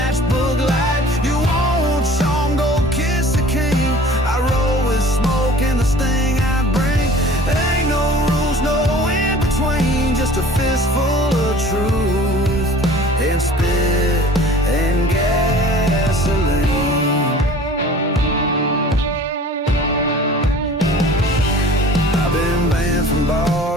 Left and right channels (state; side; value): normal; both; correlation 0.46